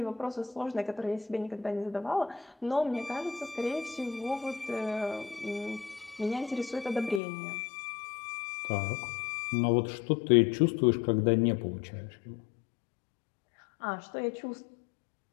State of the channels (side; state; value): right; drops out; at 7.2 s